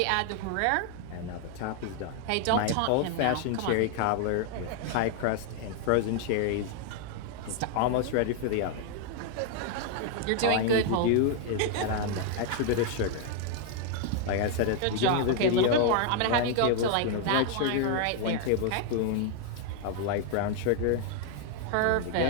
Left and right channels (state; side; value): different; both; correlation 0.00